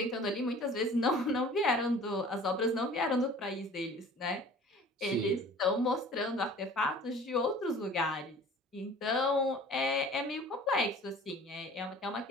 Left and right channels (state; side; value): normal; both; correlation 0.46